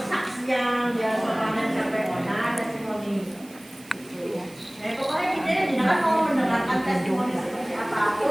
dia panen sampai mana testimoni. Nah pokoknya kita jangan mau mendengarkan testimoni seperti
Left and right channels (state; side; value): noise; right; hiss, 22 dB below the sound